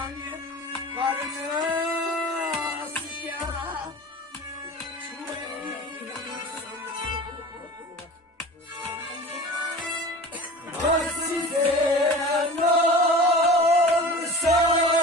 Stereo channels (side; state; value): both; normal; correlation 0.38